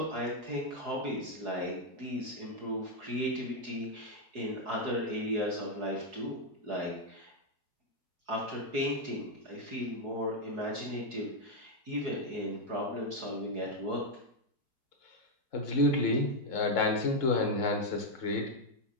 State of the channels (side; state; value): left; late; 4.7 ms